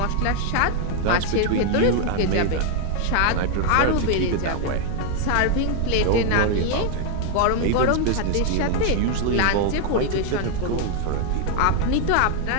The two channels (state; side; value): different; both; correlation 0.00